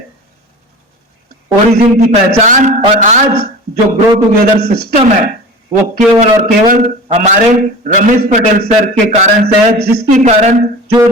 ओरिजिन की पहचान और आज जो ग्रो टुगेदर सिस्टम है वो केवल और केवल हमारे रमेश पटेल सर के कारण से है, जिसके कारण जो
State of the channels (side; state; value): both; normal; correlation 0.35